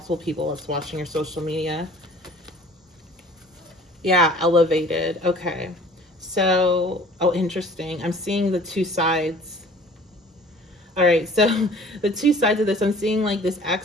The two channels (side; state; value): both; normal; correlation 0.49